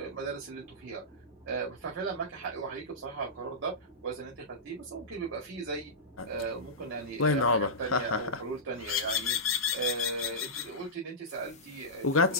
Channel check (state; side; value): normal; both; correlation -0.14